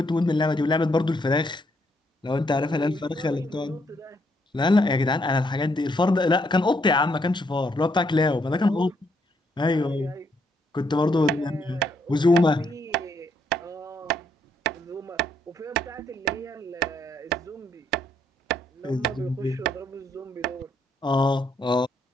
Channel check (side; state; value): both; normal; correlation 0.73